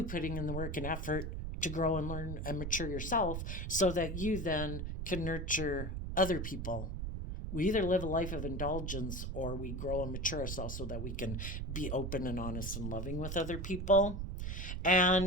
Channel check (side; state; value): right; noise; rumble, 4 dB below the sound